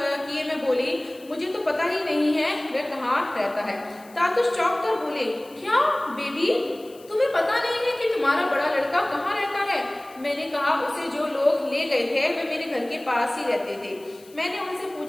किए मैं बोली मुझे तो पता ही नहीं है वह कहाँ रहता है। तातुश चौंक कर बोले क्या बेबी तुम्हें पता नहीं है कि तुम्हारा बड़ा लड़का कहाँ रहता है। मैंने कहा उसे जो लोग ले गए थे वे मेरे घर के पास ही रहते थे। मैंने उनसे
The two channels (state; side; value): noise; left; hiss, 25 dB below the sound